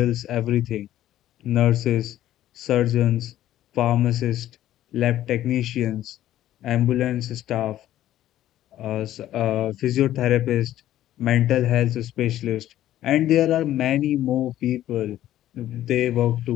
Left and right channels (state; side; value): quieter; right; 13.0 dB